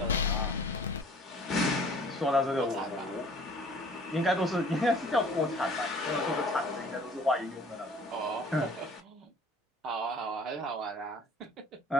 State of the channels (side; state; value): both; normal; correlation 0.51